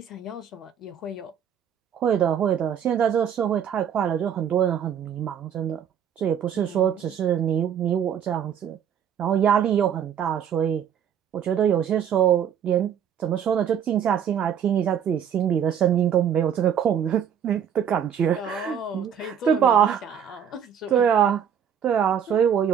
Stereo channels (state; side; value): quieter; left; 8.5 dB